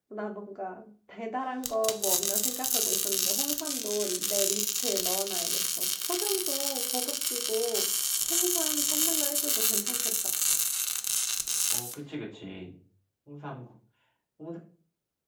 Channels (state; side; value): identical; both; correlation 1.00